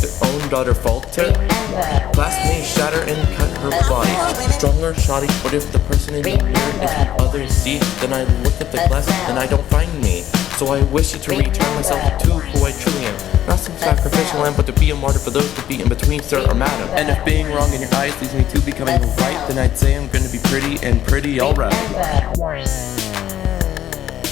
own daughter falter? Glass may shatter and cut her body, strong or shoddy, but if the person in the mirror is what others see, then I look at the glass and I don't find me. So I wish to return myself to who I truly am, not some sacrificial lamb, but to be a martyr for those to be in between, sir or madam. And if being wrong in your eyes leads me to becoming right, then I'd say I'm gonna be pretty and pretty alright.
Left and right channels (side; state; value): right; quieter; 11.6 dB